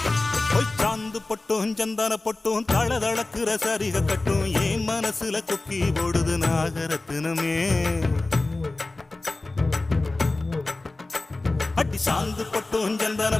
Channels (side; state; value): right; quieter; 3.1 dB